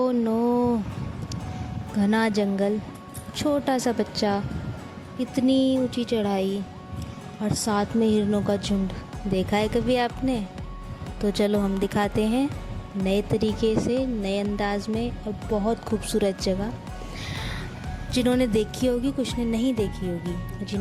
नो, घना जंगल, छोटा सा बच्चा, इतनी ऊंची चढ़ाई और साथ में हिरणों का झुंड। देखा है कभी आपने? तो चलो हम दिखाते हैं नए तरीके से, नए अंदाज में और बहुत खूबसूरत जगह। जिन्होंने देखी होगी, कुछ ने नहीं देखी होगी।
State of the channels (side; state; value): both; identical; correlation 1.00